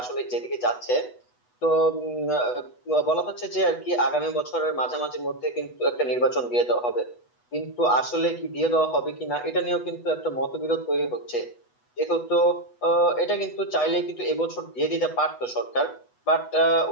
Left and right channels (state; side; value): late; right; 8.1 ms